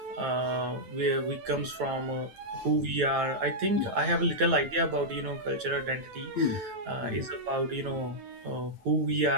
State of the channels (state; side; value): late; left; 9.1 ms